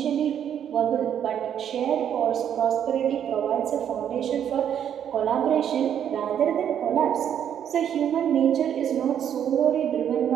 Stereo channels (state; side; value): quieter; left; 9.3 dB